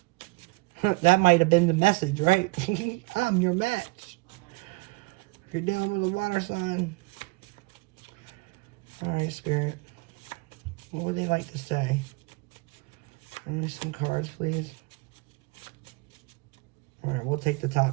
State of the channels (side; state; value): left; quieter; 25.6 dB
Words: That might have been the message, right? I'm your match. You're dealing with a water sign. Alright, Spirit. What would they like to say? Give me some cards, please. Alright, we'll take the